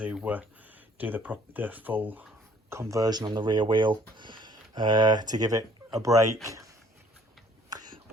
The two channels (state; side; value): normal; both; correlation 0.58